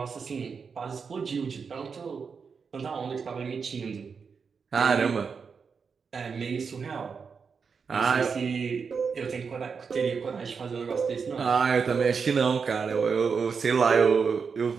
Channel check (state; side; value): quieter; left; 5.7 dB